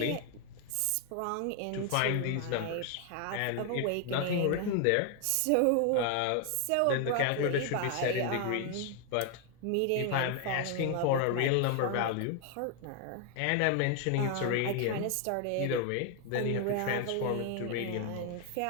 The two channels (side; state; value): both; different; correlation 0.00